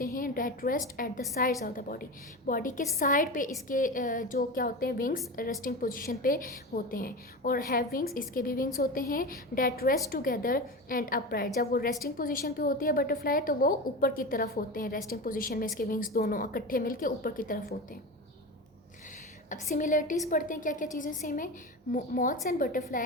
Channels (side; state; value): both; normal; correlation 0.25